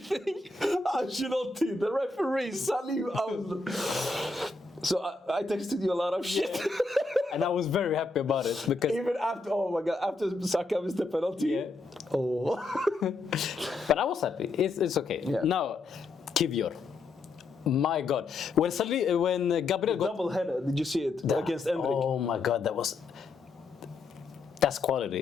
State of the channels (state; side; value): quieter; right; 3.7 dB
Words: Ancelotti, the referee, Salim. So I texted you a lot of shit. And I was very happy about it because even after, oh my god, after Saka missed the penalty. Yeah. Oh. But I was happy. It's okay. Yeah. Now, Kivior. My God, when Gabriel got double header, did you see it against Endrick? Oh my God, that's